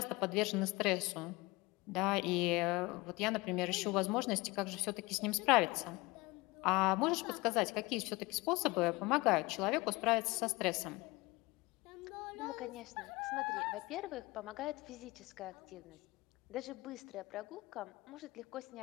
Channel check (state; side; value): quieter; right; 22.5 dB